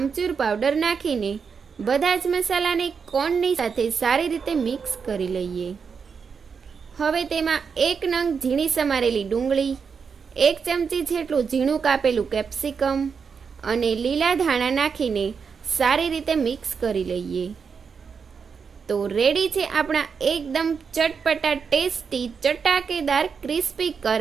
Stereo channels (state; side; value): quieter; left; 6.0 dB